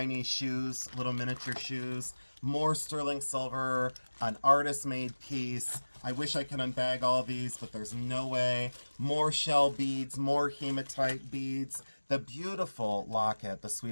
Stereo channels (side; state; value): both; inverted; correlation -1.00